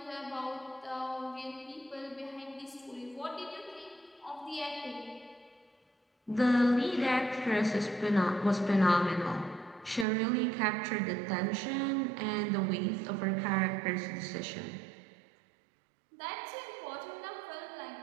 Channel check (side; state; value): left; drops out; at 10.1 s